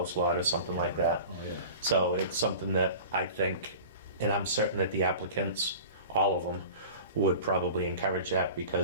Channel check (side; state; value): both; inverted; correlation -0.38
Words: lot or something like that. Oh, yeah. So it's something that I think, and I'm certain that the applicants, all of them, would probably encourage that